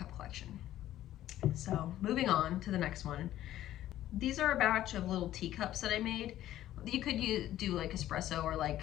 collection. So moving on to the next one. These are a batch of little teacups that I made. You could do like espresso or like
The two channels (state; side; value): quieter; right; 13.3 dB